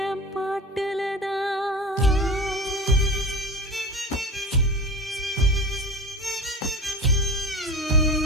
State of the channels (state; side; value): normal; both; correlation 0.32